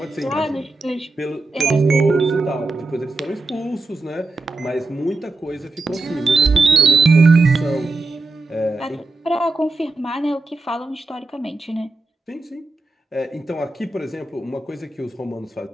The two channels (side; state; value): left; quieter; 3.2 dB